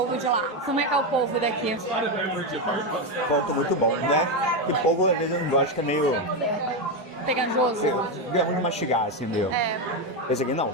de lá. Como é que é o polvo daqui? Ponto muito bom, né? E polvo, às vezes, eu não gosto, que é meio... Pegajoso. Grão de mastigar, assim, meio. É. Esse aqui não,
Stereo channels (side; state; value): both; normal; correlation 0.09